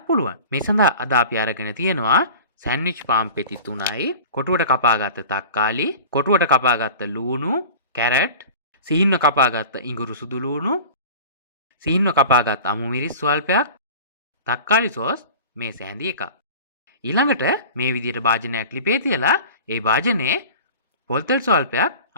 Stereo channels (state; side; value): inverted; both; correlation -0.39